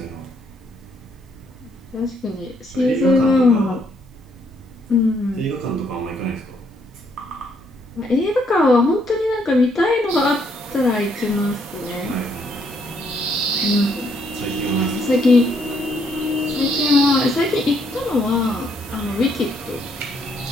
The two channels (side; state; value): both; normal; correlation 0.71